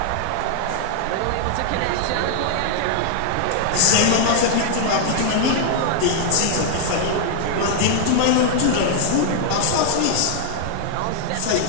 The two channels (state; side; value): different; both; correlation -0.01